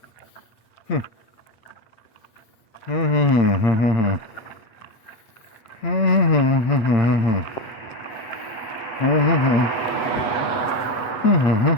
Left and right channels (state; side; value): late; right; 8.2 ms